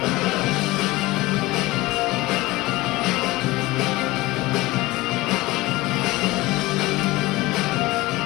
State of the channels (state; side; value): quieter; right; 19.7 dB